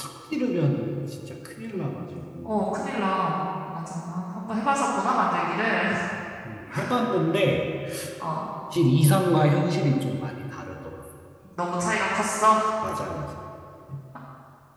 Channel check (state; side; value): identical; both; correlation 1.00